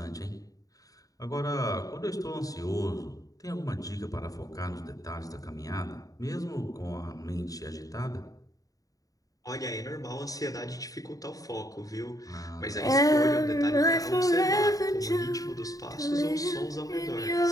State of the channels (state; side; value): late; right; 0.17 ms